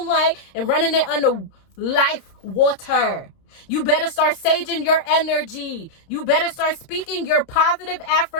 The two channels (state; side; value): late; right; 30 ms